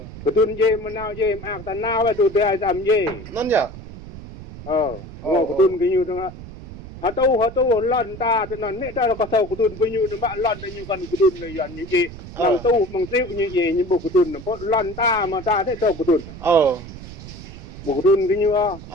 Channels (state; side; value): noise; right; rumble, 14 dB below the sound